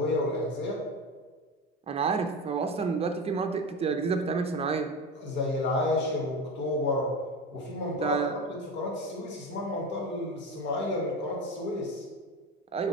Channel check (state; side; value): normal; both; correlation 0.24